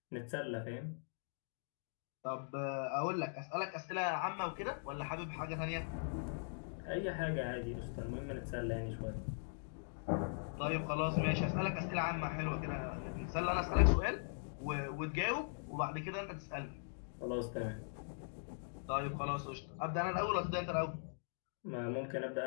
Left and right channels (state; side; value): silent; right; digital silence